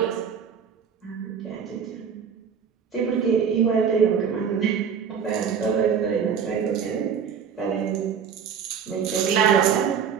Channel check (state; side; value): quieter; left; 7.1 dB